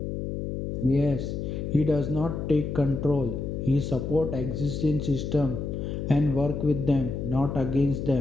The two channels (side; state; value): left; noise; hum, 4 dB below the sound